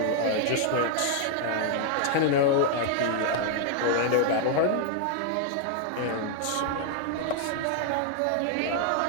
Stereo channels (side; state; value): both; different; correlation 0.00